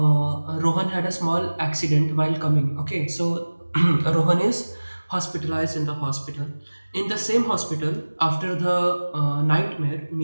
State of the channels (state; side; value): inverted; both; correlation -1.00